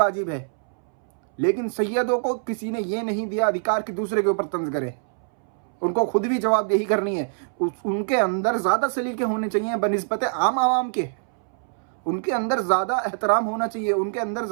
है, लेकिन सैयदों को किसी ने ये नहीं दिया अधिकार कि दूसरे के ऊपर तंज करें। उनको खुद भी जवाबदेही करनी है। उनके अंदर ज़्यादा सलीके होने चाहिए बनिस्बत आम आवाम के। उनके अंदर ज़्यादा एहतराम होना चाहिए, उनके अंदर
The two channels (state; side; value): silent; left; 62 dB below the other